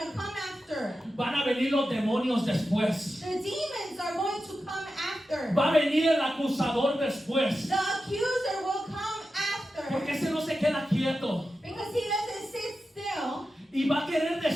to come after. Van a venir los demonios después. The demons are going to come after. Va a venir el acusador después. The accuser will come after. Porque ese no se queda quieto. Because he doesn't sit still. Y va a querer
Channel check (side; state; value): both; normal; correlation 0.91